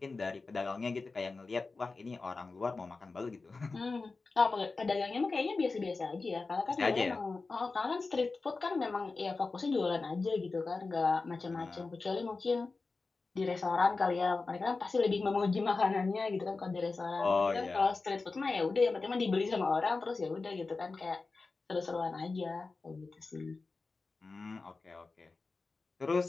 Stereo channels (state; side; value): quieter; right; 3.9 dB